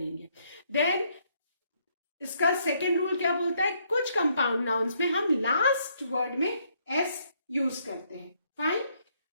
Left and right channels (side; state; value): both; inverted; correlation -0.71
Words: देन इसका सेकेंड रूल क्या बोलता है, कुछ कंपाउंड नाउन्स में हम लास्ट वर्ड में एस यूज करते हैं. Fine.